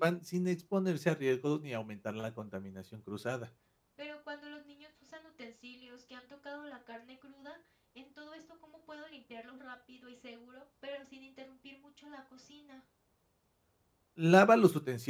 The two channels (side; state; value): both; identical; correlation 1.00